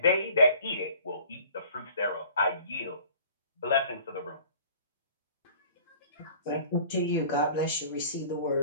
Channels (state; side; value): inverted; both; correlation -0.49